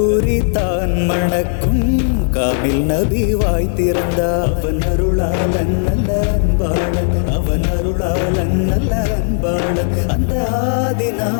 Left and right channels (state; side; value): silent; right; 68 dB below the other